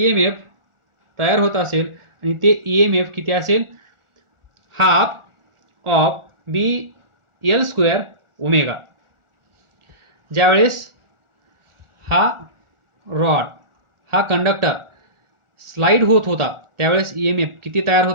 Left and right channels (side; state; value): left; late; 1.4 ms